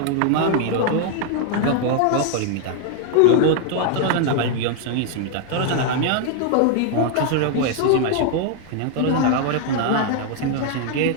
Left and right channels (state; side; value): different; both; correlation 0.00